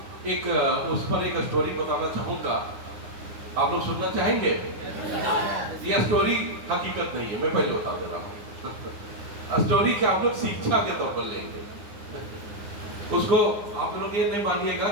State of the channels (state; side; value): late; left; 9.7 ms